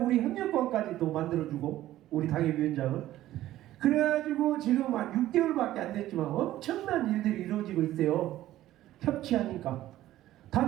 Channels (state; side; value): quieter; left; 14.3 dB